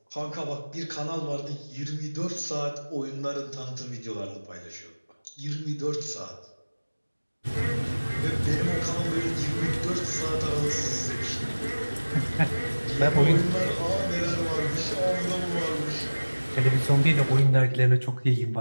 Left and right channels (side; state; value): both; inverted; correlation -1.00